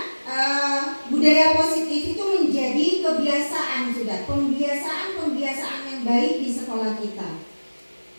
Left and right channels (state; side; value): inverted; both; correlation -1.00